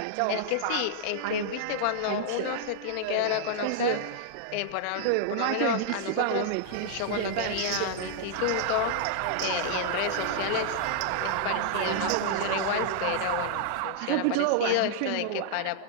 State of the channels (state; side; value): different; both; correlation -0.01